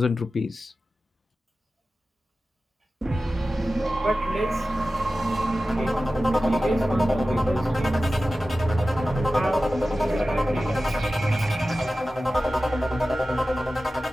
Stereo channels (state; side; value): normal; both; correlation 0.95